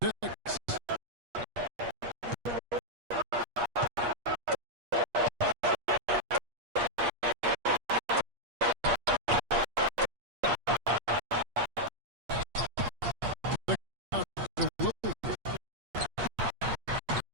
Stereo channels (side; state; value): left; late; 8.4 ms